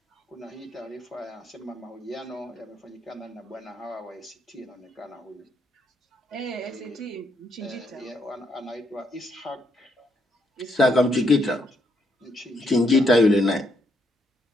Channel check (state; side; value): normal; both; correlation 0.75